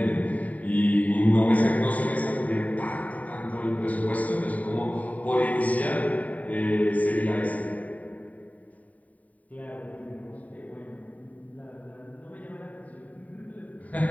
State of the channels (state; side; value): late; right; 0.071 ms